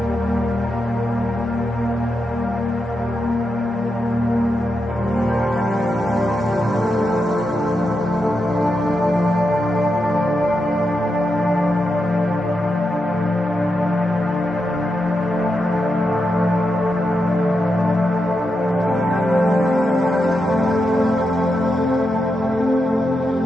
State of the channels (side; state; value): both; normal; correlation 0.86